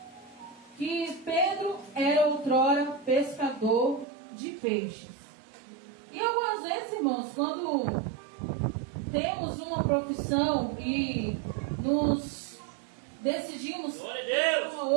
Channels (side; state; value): left; drops out; at 4.0 s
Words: que Pedro era outrora pescador de peixes. E algumas vezes, irmãos, quando temos uma profissão e nos decidimos ter uma